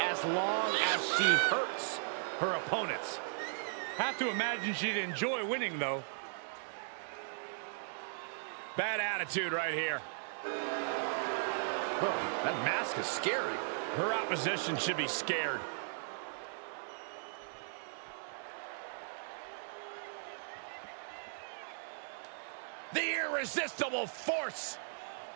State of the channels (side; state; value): left; silent; digital silence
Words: as long as she hurts her opponents. Have to imagine she'd enjoy winning, though. Bad attitude right here. Oh, that mask is scary. Her opposition should be scared. The irresistible force.